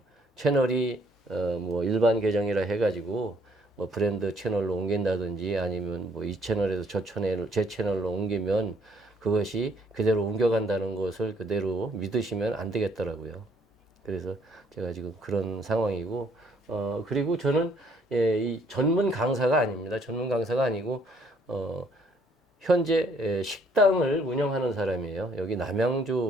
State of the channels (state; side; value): normal; both; correlation 0.64